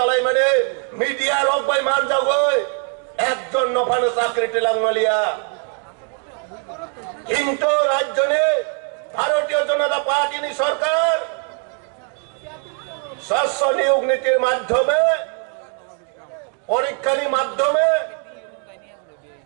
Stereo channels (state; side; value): quieter; left; 39.9 dB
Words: মানে মিডিয়া রক বাই মান যাগই একজন নফান চাকরি টিলাংমালিয়া কিন্তু রাজ্যনে ভারতীয় জনতা পার্টি সরকার শস্য নিয়োগ নীতির মাধ্যমে পরীক্ষার মাধ্যমে